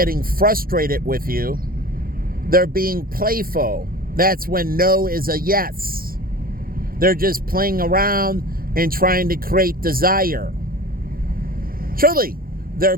frustrated with you, they're being playful. That's when no is a yes. They're just playing around and trying to create desire. Truly, they're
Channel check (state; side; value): late; left; 0.42 ms